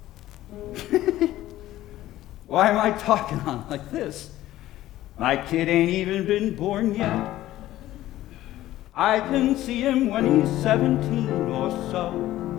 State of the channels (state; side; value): quieter; right; 14.7 dB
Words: Why am I talking on like this? My kid ain't even been born yet. I can see him when he's 17 or so,